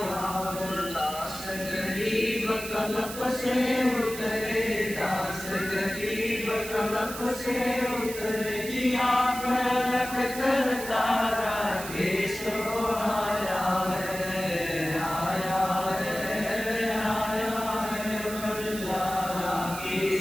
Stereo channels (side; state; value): right; noise; hiss, 10 dB below the sound